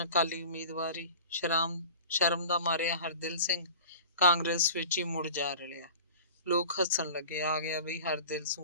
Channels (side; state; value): both; inverted; correlation -0.40